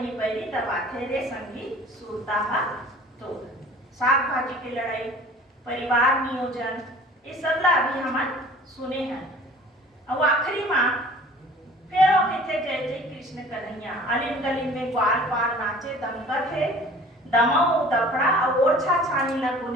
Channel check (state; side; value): normal; both; correlation 0.47